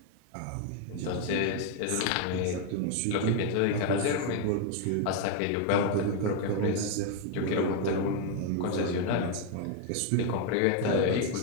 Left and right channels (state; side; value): different; both; correlation 0.00